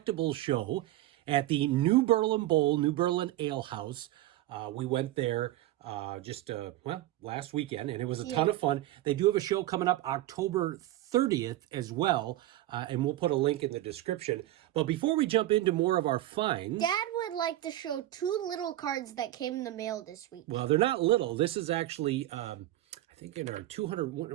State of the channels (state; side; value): quieter; left; 15.1 dB